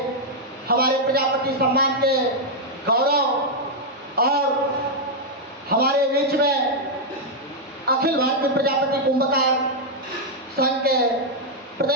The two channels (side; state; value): both; normal; correlation -0.02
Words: हमारे प्रजापति सम्मान के गौरव और हमारे बीच में अखिल भारतीय प्रजापति कुंभकार संघ के